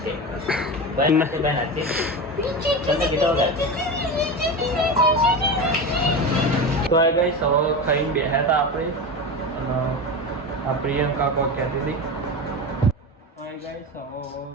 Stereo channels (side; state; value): both; normal; correlation 0.23